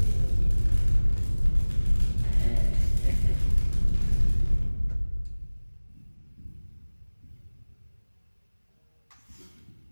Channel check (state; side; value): inverted; both; correlation -1.00